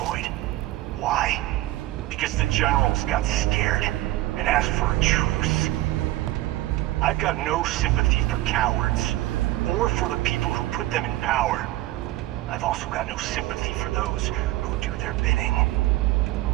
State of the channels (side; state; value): left; quieter; 16.6 dB